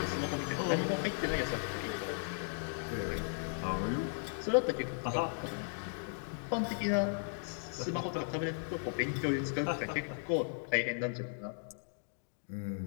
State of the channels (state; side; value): silent; right; digital silence